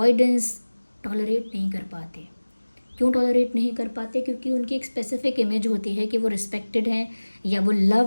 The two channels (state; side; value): inverted; both; correlation -1.00